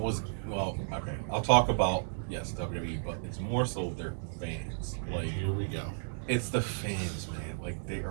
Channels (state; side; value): silent; left; digital silence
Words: talk about, yes, WWE, but it's more so their fans. Like, Here we go. it's the fans, man. Like, they